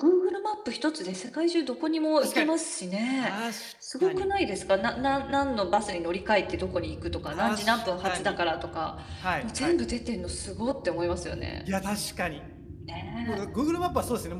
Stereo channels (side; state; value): both; identical; correlation 1.00